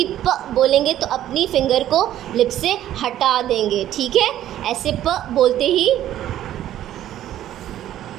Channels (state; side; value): quieter; left; 12.3 dB